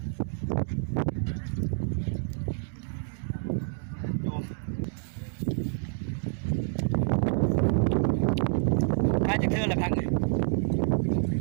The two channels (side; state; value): left; silent; 59 dB below the other